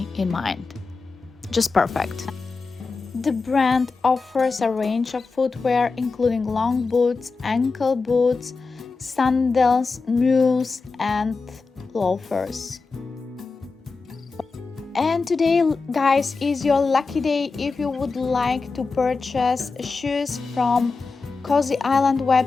in mind. Just perfect. The brand offers a range of footwear including long boots, ankle boots, sandals, mules, and loafers. And today, guys, is your lucky day. If you would like to purchase shoes from Cosy Island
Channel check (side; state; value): right; quieter; 4.3 dB